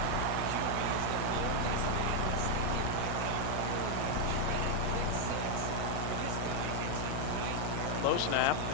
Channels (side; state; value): both; different; correlation 0.00